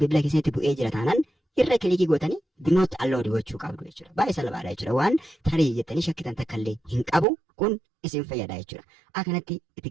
bilbila keessanitti bu'ee jira taanaan irra kilikii gootanii do not allow gochuu qabdu jechuudha. Baay'ee salphaadha jechuudha. Waan tarii jettanii shakkitan takka illee hin qabu kun isin fayyada jechuudha. Akkanatti itti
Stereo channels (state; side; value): drops out; left; at 7.2 s